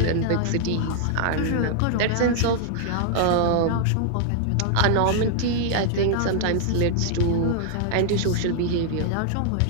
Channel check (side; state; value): both; different; correlation -0.01